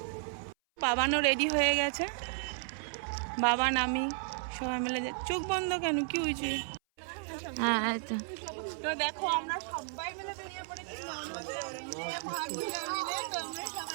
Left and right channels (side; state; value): left; silent; 55 dB below the other